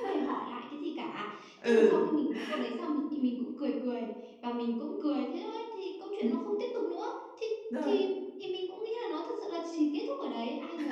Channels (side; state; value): both; identical; correlation 1.00